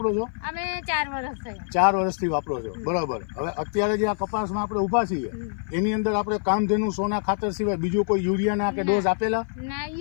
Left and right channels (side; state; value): right; silent; 56 dB below the other